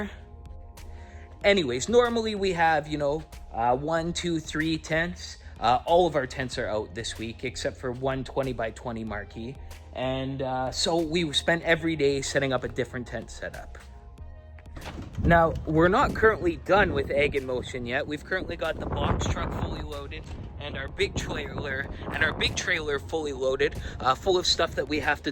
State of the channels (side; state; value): both; identical; correlation 1.00